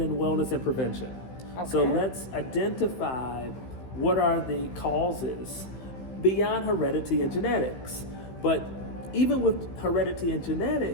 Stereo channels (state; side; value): late; right; 15 ms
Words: wellness and prevention. Okay. So let's identify what are the causes beyond heredity and genetics. But even with heredity and